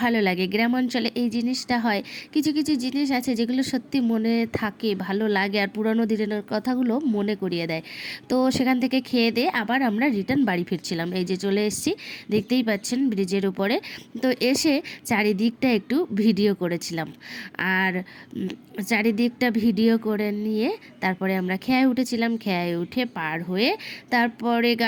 লাগে। গ্রাম অঞ্চলে এই জিনিসটা হয়, কিছু কিছু জিনিস আছে যেগুলো সত্যি মনে থাকে, ভালো লাগে, আর পুরানো দিনের কথাগুলো মনে করিয়ে দেয়। তো সেখান থেকে খেয়ে দিয়ে আবার আমরা রিটার্ন বাড়ি ফিরছিলাম। এই যে চলে এসেছি, দেখতেই পাচ্ছেন ব্রিজের উপরে। তো এসে চারিদিকটা একটু ভিডিও করেছিলাম, আর চারিদিকটা ভিডিও করে নিয়ে তারপরে আমরা খেয়ায় উঠেছিলাম। খেয়ায় উঠে পার হয়ে তারপরে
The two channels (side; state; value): both; identical; correlation 1.00